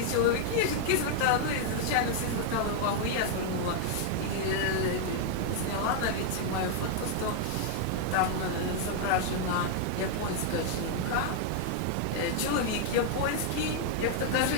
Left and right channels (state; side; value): different; both; correlation 0.00